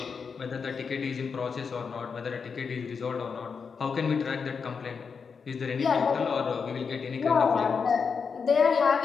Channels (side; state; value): right; quieter; 5.7 dB